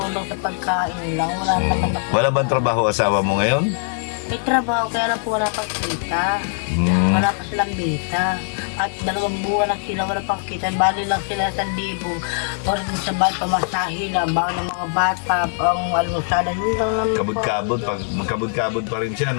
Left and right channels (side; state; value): right; silent; 65 dB below the other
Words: sa pagkain lang. Wala naman ako. Wala bang trabaho asawa mo ngayon? May trabaho, kaya lang po wala pang kita. Wala pa silang bita. At 2 buwan na sila, wala pang kita. Bali lang sila 1,000. Or din sa bahay, pamasahe na. Bawa ng mga bata, ang almusalan. Yun lang naman po. Kabod-kabod, magkabod-kabod pa rin siya,